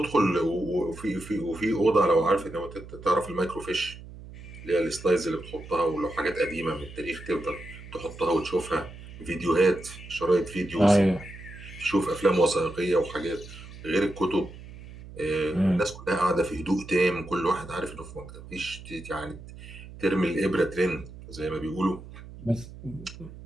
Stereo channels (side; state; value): right; noise; hum, 15 dB below the sound